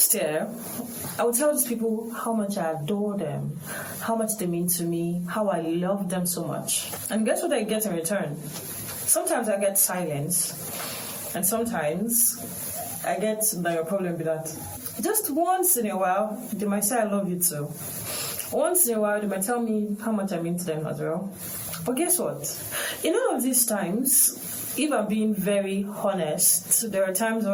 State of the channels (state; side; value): identical; both; correlation 1.00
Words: year, I would tell these people how much I adore them, how much they mean to me, how I love them so much. And guess what I get in return? Sometimes I get silence, and sometimes I get the problem with that. Just once in a while, they might say I love you too. Once in a while, they might tell me how much I mean to them as well. But guess what? In all of these times, if I'm being very honest, there are times